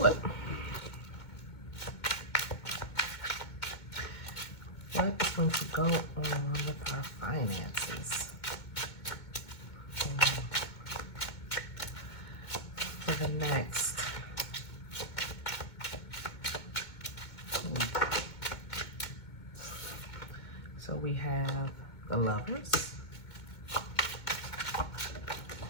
it. What is going to go on with our finances for the next week? So we have the Lovers,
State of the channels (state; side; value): late; right; 2.2 ms